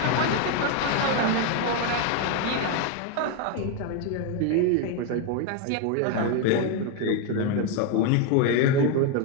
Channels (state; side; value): different; both; correlation 0.01